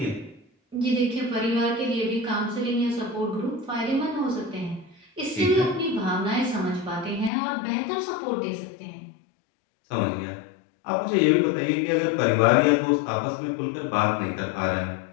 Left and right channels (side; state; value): right; drops out; at 7.3 s